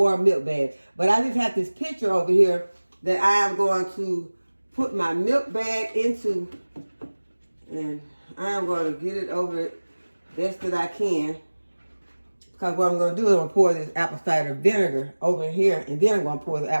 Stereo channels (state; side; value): inverted; both; correlation -1.00